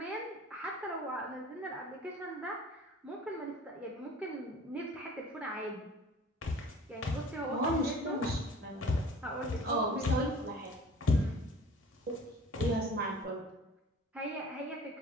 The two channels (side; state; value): both; normal; correlation 0.47